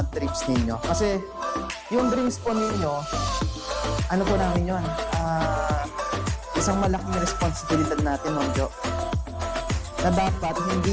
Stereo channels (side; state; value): both; identical; correlation 1.00